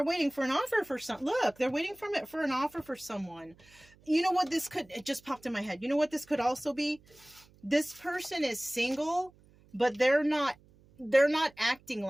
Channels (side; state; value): right; noise; hum, 28 dB below the sound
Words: waiting for an offer for they're waiting for an offer for someone. You know what it just popped in my head. You know what this could also be? This person is single, but they're not acting